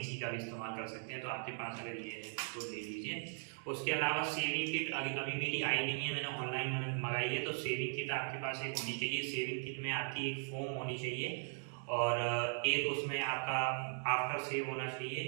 का भी इस्तेमाल कर सकते हैं, तो आपके पास अगर ये है तो ले लीजिए। उसके अलावा सेविंग किट अभी अभी मेरी आई नहीं है, मैंने ऑनलाइन मंगाई है, तो सेविंग किट आपके पास एक होनी चाहिए। सेविंग किट में आपकी एक फोम होनी चाहिए और एक उसमें आपका आफ्टर सेव होना चाहिए।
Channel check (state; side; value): silent; left; 52 dB below the other